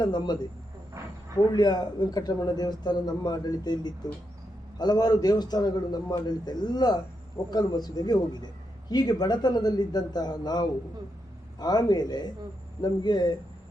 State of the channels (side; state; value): both; normal; correlation 0.83